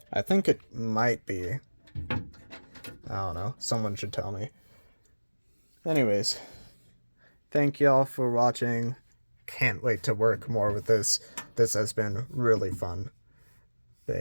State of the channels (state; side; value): inverted; both; correlation -1.00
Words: I think it might be. I don't know. Someone should tell me. Anyways, thank y'all for watching. Can't wait to work more with this. This has been really fun. But